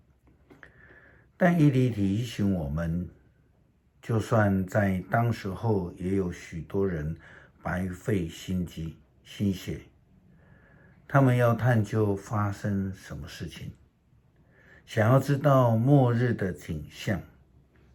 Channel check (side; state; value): both; identical; correlation 1.00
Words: 但以理提醒我们，就算在当时候也有许多人白费心机心血，他们要探究发生什么事情，想要知道末日的景象，